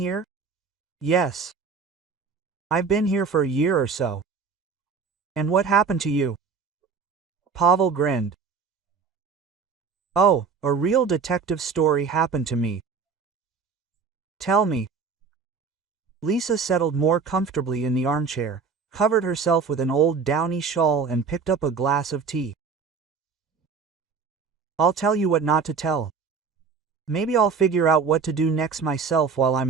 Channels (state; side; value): quieter; left; 5.4 dB